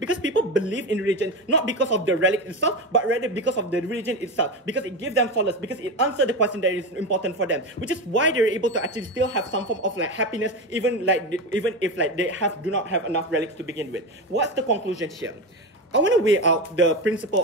people believe in religion not because of the relic itself, but rather because of the religion itself, because it gives them solace, because it answers the question that is important for them, which is why they're able to actually still have some form of like happiness, even if like they do not have enough relics to begin with. What's the conclusion here? I want to weigh out the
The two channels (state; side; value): normal; both; correlation 0.19